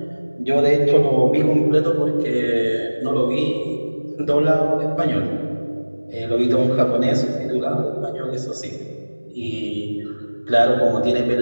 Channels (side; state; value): both; inverted; correlation -1.00